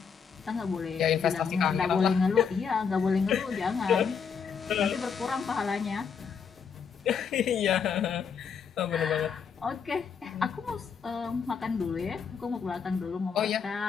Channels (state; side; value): quieter; right; 6.5 dB